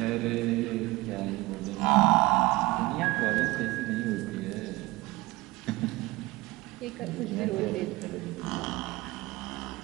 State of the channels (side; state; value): left; quieter; 20.4 dB